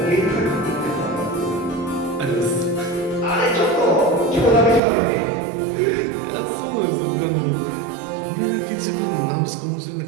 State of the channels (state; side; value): drops out; left; at 4.8 s